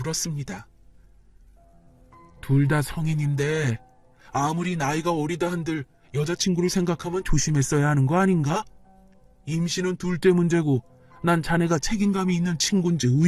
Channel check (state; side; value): identical; both; correlation 1.00